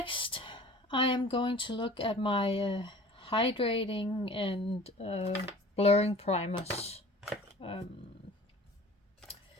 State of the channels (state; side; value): normal; both; correlation 0.45